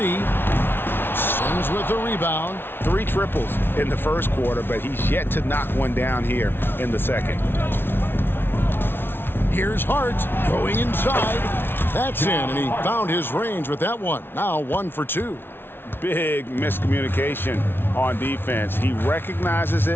Sims with the rebound. 3 triples in the first quarter, but he's yet to knock one down here in the second. Here's Hart going inside. That's in, and he found his range with that one. Now 1 for 2. Big miscommunication on defense. He recognizes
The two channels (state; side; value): late; right; 0.11 ms